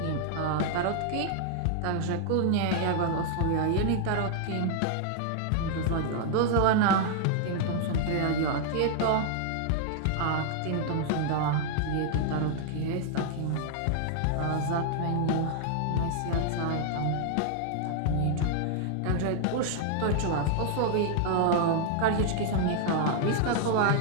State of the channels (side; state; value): both; different; correlation -0.01